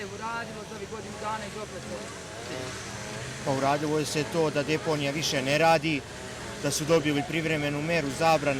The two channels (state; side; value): identical; both; correlation 1.00